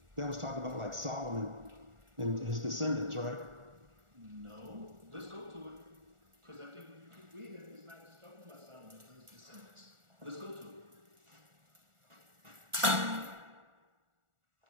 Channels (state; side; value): late; left; 1.4 ms